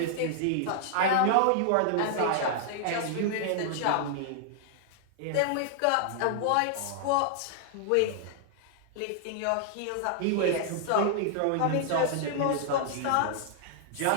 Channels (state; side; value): different; both; correlation -0.01